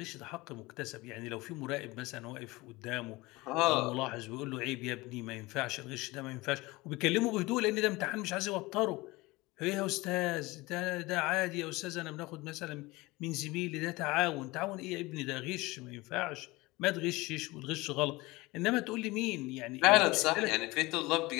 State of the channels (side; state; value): right; quieter; 21.7 dB